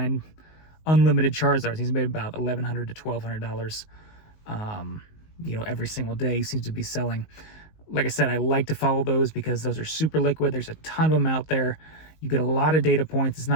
unlimited Charizards. He's made about $1,100 to $1,200. Every single day seems to be selling. Like I said, I like to follow those because those are super liquid. There's a ton of them out there. You get a lot of data points. It's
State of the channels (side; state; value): right; late; 19 ms